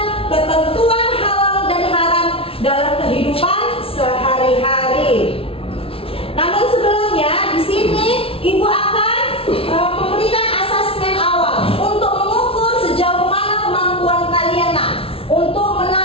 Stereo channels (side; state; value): right; late; 0.26 ms